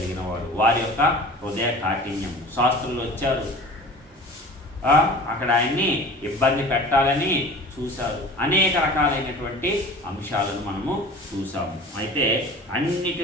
వాడు, వారి యొక్క హృదయ కాఠిన్యము. శాస్త్రులు వచ్చారు, అక్కడ ఆయన్ని ఇబ్బంది పెట్టాలని చూశారు. అనేక రకాలైనటువంటి అంశాలను మనము చూసాము. అయితే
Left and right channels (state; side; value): normal; both; correlation 0.41